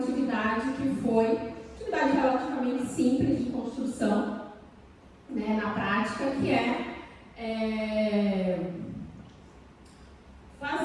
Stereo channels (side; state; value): both; identical; correlation 1.00